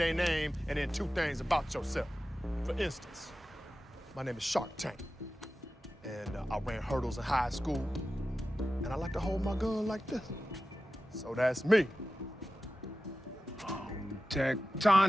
name and then two things about yourself. For instance, my name is Shark Tank, and I ran hurdles in high school, and I like to hold my gun like this. So that's me.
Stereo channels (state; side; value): normal; both; correlation 0.94